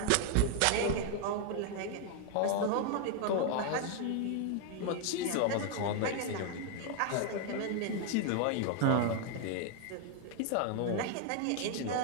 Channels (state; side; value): different; both; correlation 0.00